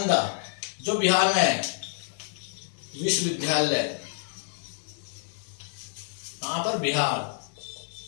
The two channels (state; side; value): silent; right; 59 dB below the other